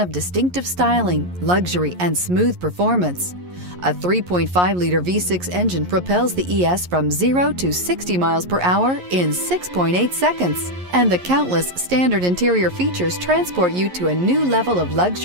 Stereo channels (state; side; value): late; left; 11 ms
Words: distinctive styling, luxury, and smooth performance. A 3.5-liter V6 engine propels the ES from 0 to 60 miles per hour in 6.8 seconds, and the countless standard interior features transport you to a new level of